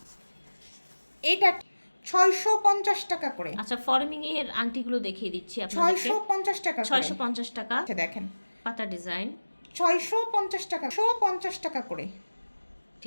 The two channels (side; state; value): both; inverted; correlation -1.00